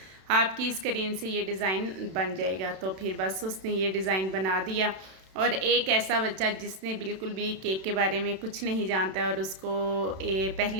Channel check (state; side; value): late; left; 32 ms